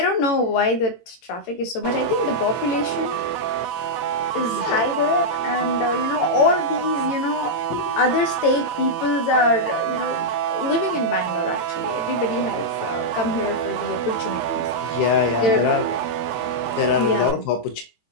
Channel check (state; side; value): late; right; 18 ms